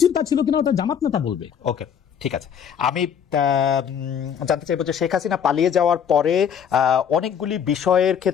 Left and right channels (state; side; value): quieter; right; 8.1 dB